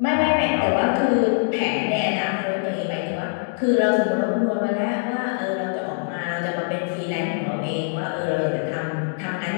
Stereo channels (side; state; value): right; silent; digital silence